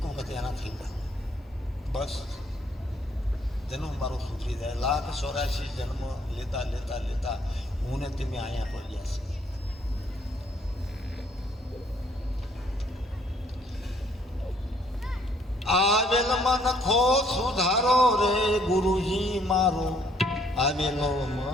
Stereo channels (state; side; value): normal; both; correlation 0.65